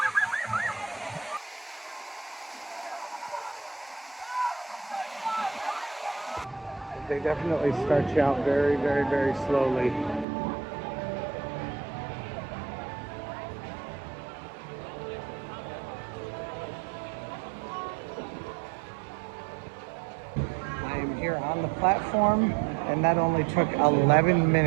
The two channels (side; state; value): left; drops out; at 10.2 s